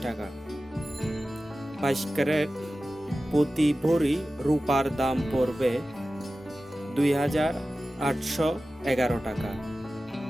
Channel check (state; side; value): normal; both; correlation 0.95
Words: টাকা। 22 ক্যারেট প্রতি ভরি রূপার দাম পড়বে 2811 টাকা।